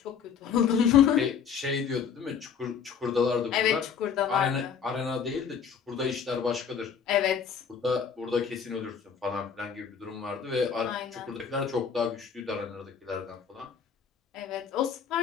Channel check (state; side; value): quieter; right; 7.0 dB